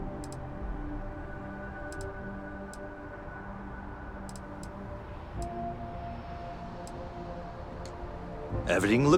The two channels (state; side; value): identical; both; correlation 1.00